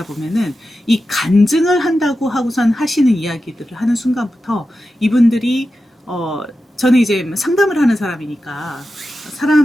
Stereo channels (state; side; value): normal; both; correlation 0.92